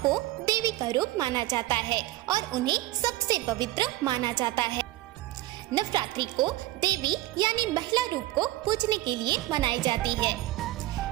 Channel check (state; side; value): quieter; left; 17.0 dB